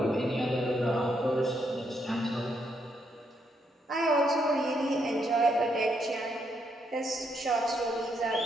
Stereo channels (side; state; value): both; normal; correlation 0.76